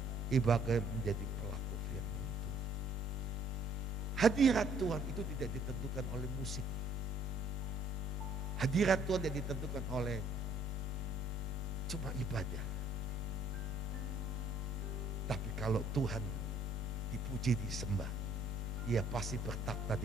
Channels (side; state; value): both; normal; correlation 0.61